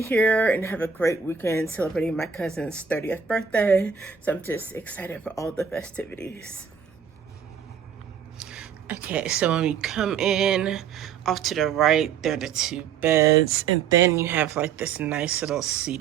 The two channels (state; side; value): quieter; left; 6.9 dB